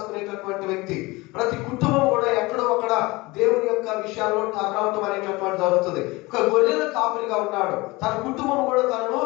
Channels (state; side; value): quieter; right; 22.6 dB